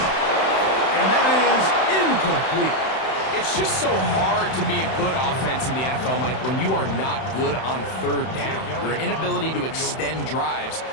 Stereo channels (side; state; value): right; late; 31 ms